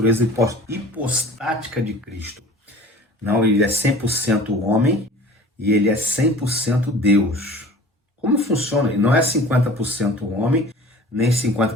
hipostática de Cristo. Não, ele é 100% homem e ele é 100% Deus. Como funciona? Ele não é 50% homem, nem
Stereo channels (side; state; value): both; normal; correlation 0.43